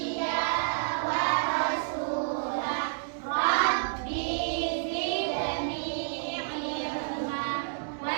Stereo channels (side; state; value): left; silent; digital silence